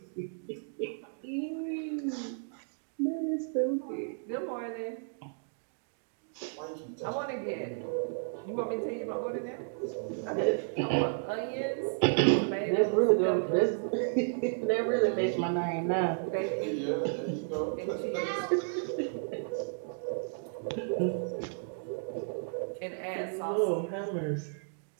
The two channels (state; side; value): silent; left; digital silence